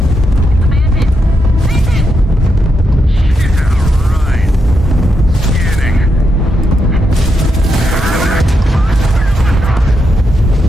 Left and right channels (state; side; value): normal; both; correlation 0.82